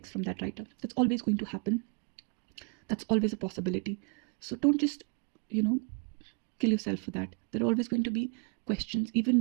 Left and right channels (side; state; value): left; quieter; 34.8 dB